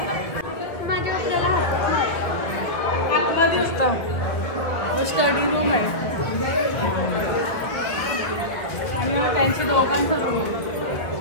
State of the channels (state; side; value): late; right; 1.3 ms